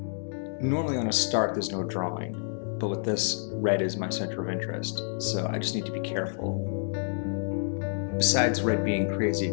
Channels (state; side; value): silent; right; digital silence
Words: Normally on a start there's no drawing, but with this, red is my center of interest, so I just need to be careful. Besides red being crazy